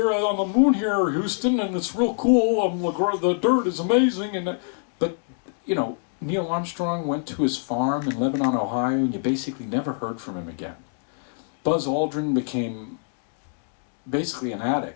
on the moon here, Houston, and it's real cool. The dirt is amazing. But, you know, Neil Armstrong went to his farm in Lebanon, Ohio, and you basically never heard from him again. Buzz Aldrin became basically an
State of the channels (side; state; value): right; silent; 62 dB below the other